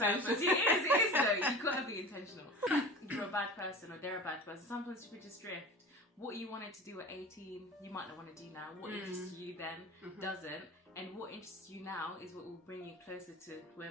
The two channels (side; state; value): both; normal; correlation 0.35